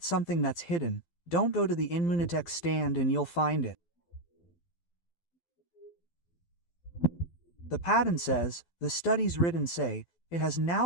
something that's hidden. Don't go to the Inmunitech stand and you'll find it. The patent says, the studies written say, it has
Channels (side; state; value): right; late; 12 ms